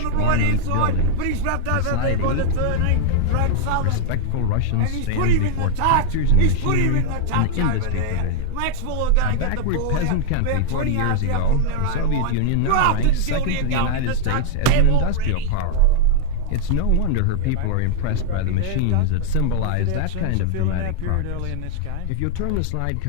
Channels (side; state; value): both; different; correlation 0.00